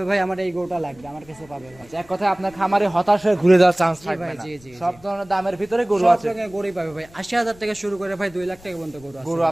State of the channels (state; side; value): noise; left; rumble, 24 dB below the sound